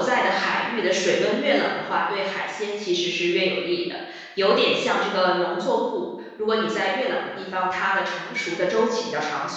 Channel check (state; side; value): identical; both; correlation 1.00